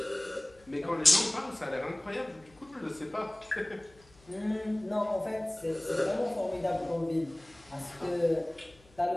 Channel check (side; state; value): left; noise; hum, 28 dB below the sound